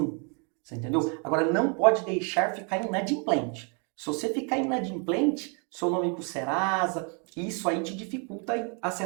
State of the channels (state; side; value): quieter; left; 37.7 dB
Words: Você entendeu? Agora não pode deixar ficar inadimplente. Se você ficar inadimplente, seu nome ir para o Serasa, isso aí te dificulta